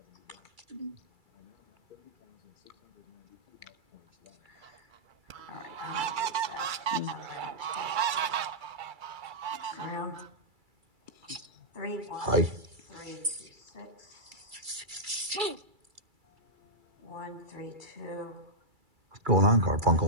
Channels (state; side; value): late; left; 2.3 ms